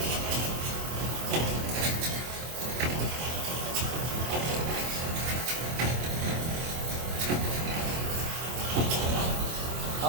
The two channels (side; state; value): left; late; 25 ms